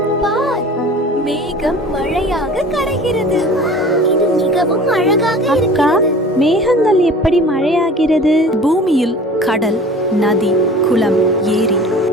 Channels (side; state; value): both; normal; correlation 0.42